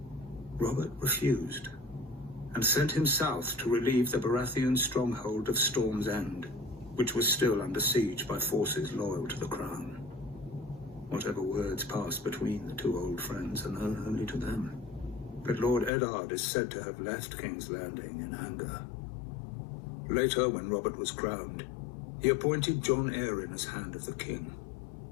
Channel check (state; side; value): drops out; right; at 15.9 s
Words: Robert refused, and sent him south to relieve the Baratheon stronghold of Storm's End, which was still under siege by forces loyal to the crown. Whatever words passed between the two old friends are known only to them. But Lord Eddard is said to have left King's Landing in anger. Later, when Robert was crowned, he appointed Jon Arryn as Hand of the King.